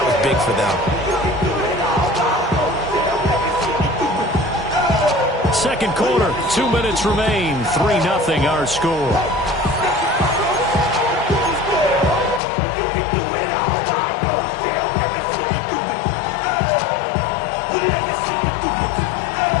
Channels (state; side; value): drops out; right; at 12.4 s